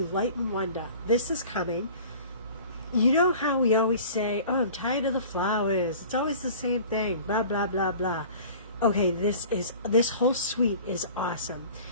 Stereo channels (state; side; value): inverted; both; correlation -0.43